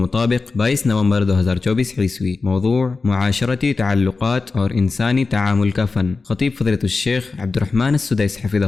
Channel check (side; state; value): right; quieter; 4.1 dB